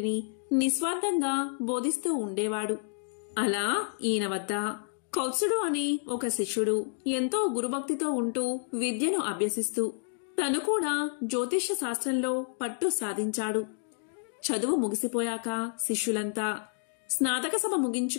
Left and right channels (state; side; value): silent; right; digital silence